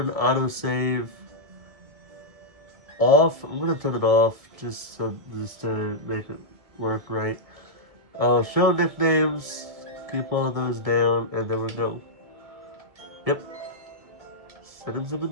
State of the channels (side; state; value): left; late; 1.7 ms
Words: autosave off. I'm gonna turn it off just to make it work right. Show nicknames. Keep all of those down, and there we go. Yep. Settings have